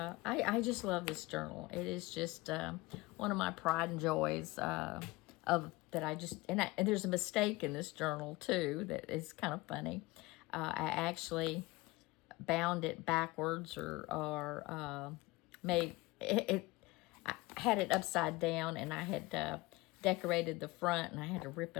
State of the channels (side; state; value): right; quieter; 21.6 dB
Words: just love this journal. It is just one of my pride and joys of that I just, and there's a mistake in this journal too that is kind of funny. I actually bound it backwards or made it, I had it upside down, and I had decorated the front, and I had to rip